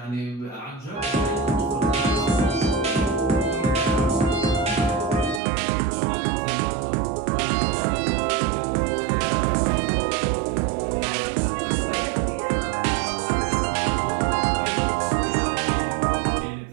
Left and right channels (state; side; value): drops out; left; at 5.4 s